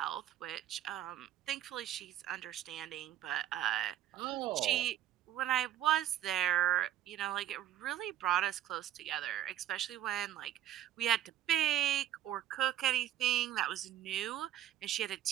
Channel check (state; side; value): quieter; left; 11.8 dB